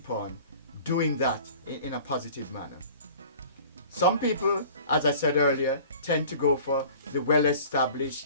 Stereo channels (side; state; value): both; inverted; correlation -0.45